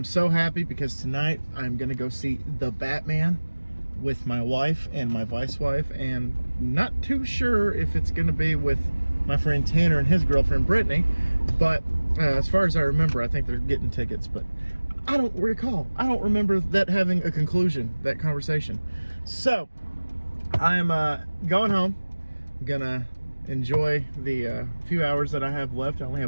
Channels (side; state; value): both; inverted; correlation -1.00